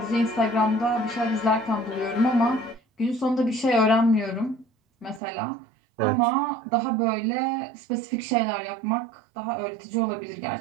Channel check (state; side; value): drops out; left; at 5.2 s